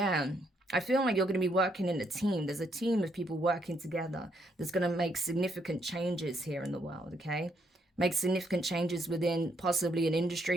I feel like you're going to be working in a team. There's a team of people working together that's going to make significant changes here in the world, okay? Make significant changes within possibly an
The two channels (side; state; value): both; normal; correlation 0.74